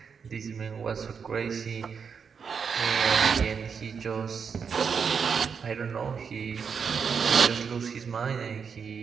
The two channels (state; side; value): quieter; left; 6.3 dB